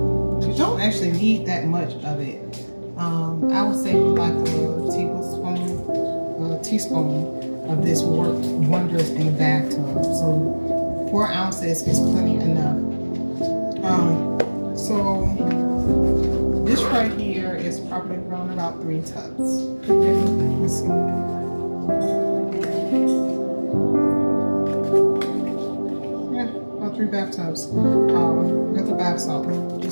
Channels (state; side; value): inverted; both; correlation -1.00